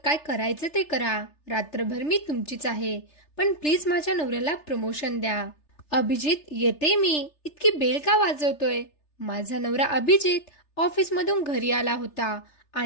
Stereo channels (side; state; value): right; late; 3.3 ms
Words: करायचं ते करा. रात्रभर मी तुमचीच आहे. पण प्लीज माझ्या नवऱ्याला प्रमोशन द्या. अभिजित, येते मी. इतकी बेल का वाजवतोय? माझा नवरा अभिजित ऑफिसमधून घरी आला होता